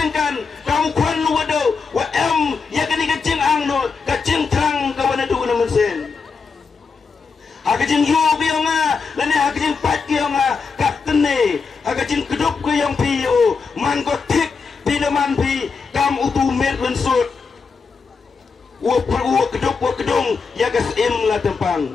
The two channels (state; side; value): quieter; right; 5.0 dB